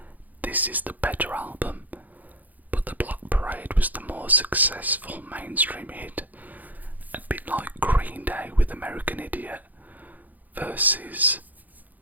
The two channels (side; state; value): left; late; 0.082 ms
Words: this is the better album, but the Black Parade was the more successful mainstream hit, a bit like Green Day with American Idiot versus,